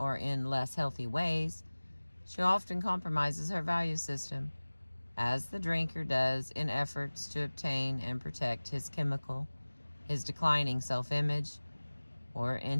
in less healthy ways, she often compromises her value system, as the drinker does in efforts to obtain and protect his declining self-image, or in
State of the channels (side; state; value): both; inverted; correlation -1.00